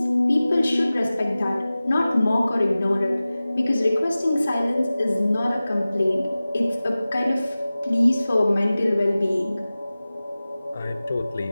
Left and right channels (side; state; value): both; inverted; correlation -0.97